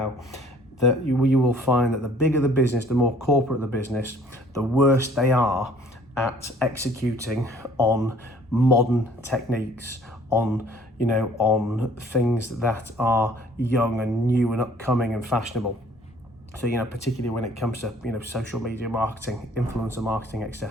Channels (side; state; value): both; normal; correlation 0.56